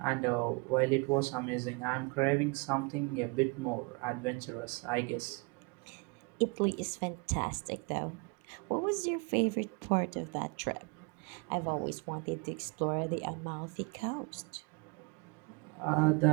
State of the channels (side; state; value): left; quieter; 30.7 dB